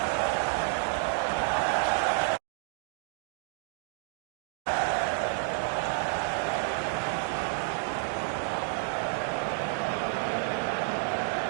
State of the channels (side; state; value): left; silent; 58 dB below the other